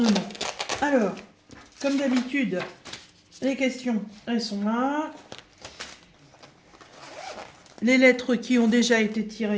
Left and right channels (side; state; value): both; identical; correlation 1.00